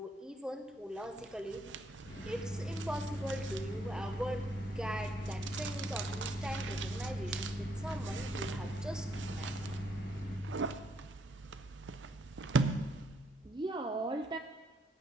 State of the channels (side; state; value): both; normal; correlation 0.73